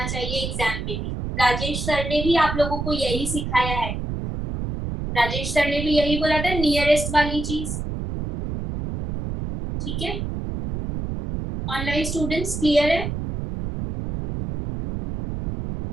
चाहिए एग्जाम में भी। राजेश सर ने भी आप लोगों को यही सिखाया है, राजेश सर ने भी यही बोला था, नियरेस्ट वाली चीज। ठीक है, ऑनलाइन स्टूडेंट्स क्लियर है?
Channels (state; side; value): noise; right; rumble, 4 dB below the sound